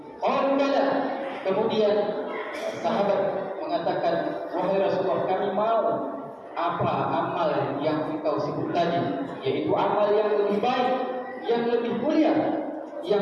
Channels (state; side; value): identical; both; correlation 1.00